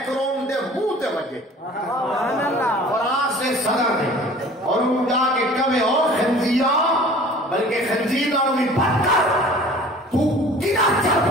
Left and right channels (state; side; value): normal; both; correlation 0.46